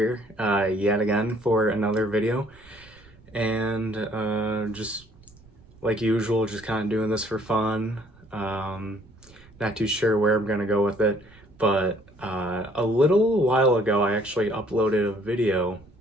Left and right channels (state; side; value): noise; right; rumble, 26 dB below the sound